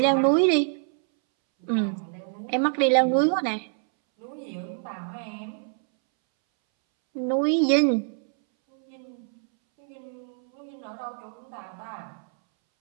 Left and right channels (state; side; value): silent; left; 61 dB below the other